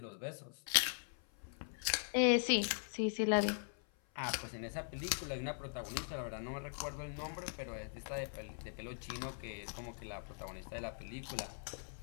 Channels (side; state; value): right; silent; 51 dB below the other